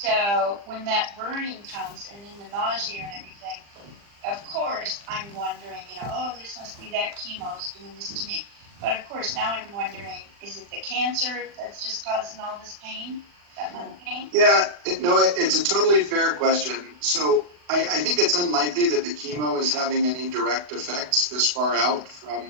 when that burning comes, and then the nausea and everything, of course, I'm wondering, oh, this must be that chemo's doing this to me. But of course, now I'm wondering, is it the cancer that's just causing all this pain, that lung pain? Yeah, it's a totally fair question. So I think it's unlikely that the chemo is having any direct effects this far out from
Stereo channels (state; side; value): late; left; 40 ms